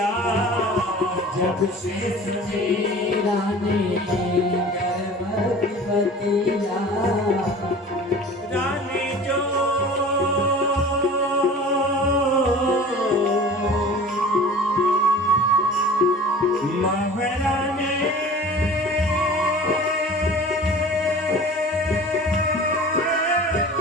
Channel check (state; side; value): normal; both; correlation 0.41